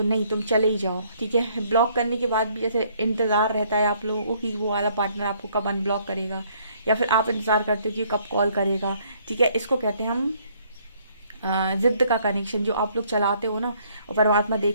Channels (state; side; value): inverted; both; correlation -0.64